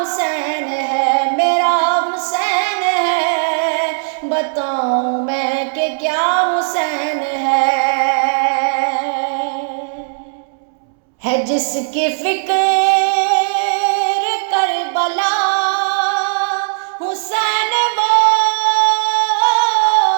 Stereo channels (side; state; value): left; silent; 69 dB below the other